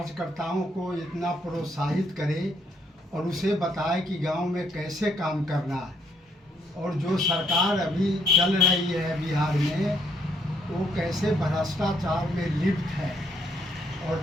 को इतना प्रोत्साहित करे और उसे बताए कि गांव में कैसे काम करना है। और जो सरकार अभी चल रही है बिहार में वो कैसे भ्रष्टाचार में लिप्त है और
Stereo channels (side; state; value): both; normal; correlation 0.70